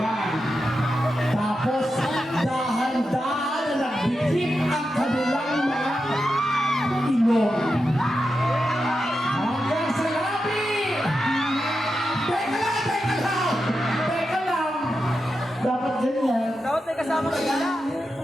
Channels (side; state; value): both; normal; correlation 0.89